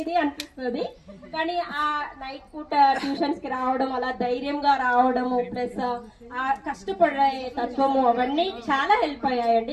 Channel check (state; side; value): identical; both; correlation 1.00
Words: అనిపిస్తుంది. కానీ ఆ నైట్ పూట ట్యూషన్స్ కి రావడం, అలా ధైర్యంగా రావడము, ప్లస్ ఆ కష్టపడే తత్వము అవన్నీ చాలా హెల్ప్